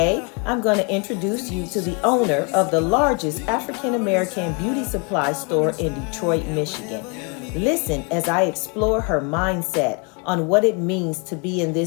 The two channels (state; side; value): quieter; right; 33.6 dB